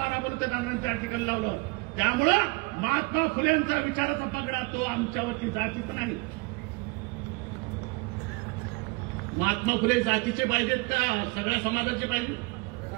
बलुतेदारांनी त्या ठिकाणी लावलं. त्यामुळं महात्मा फुलेंचा विचाराचा पगडा तो आमच्यावरती जातीच नाही. महात्मा फुले जातीचे पाहिजेत का सगळ्या समाजाचे पाहिजे?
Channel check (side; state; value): left; quieter; 27.1 dB